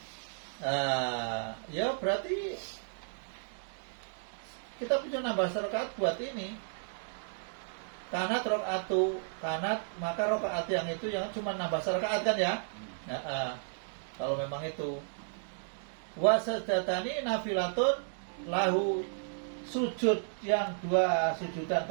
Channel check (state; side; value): silent; left; digital silence